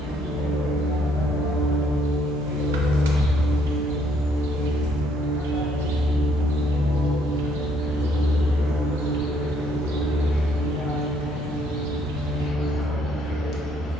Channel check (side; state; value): both; normal; correlation 0.68